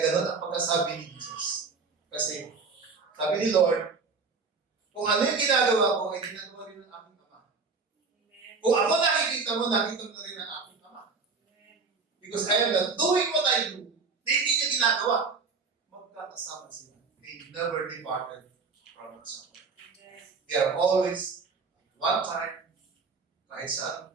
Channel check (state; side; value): quieter; left; 4.7 dB